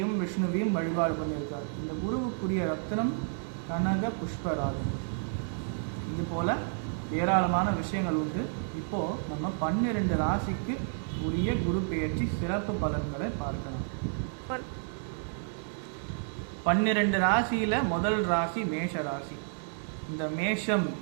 விஷ்ணுவையும் வழிபாடு பண்ணியிருக்கார். இந்த குருவுக்குரிய ரத்னம் கனக புஷ்பராகம். இது போல ஏராளமான விஷயங்கள் உண்டு. இப்போ நம்ம 12 ராசிக்கு உரிய குரு பெயர்ச்சி சிறப்பு பலன்களை பார்க்கலாம். 12 ராசியில முதல் ராசி மேஷ ராசி. இந்த மேஷம்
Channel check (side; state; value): left; silent; digital silence